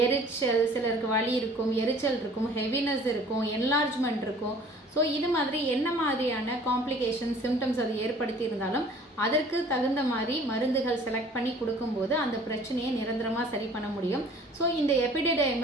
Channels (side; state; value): both; normal; correlation 0.51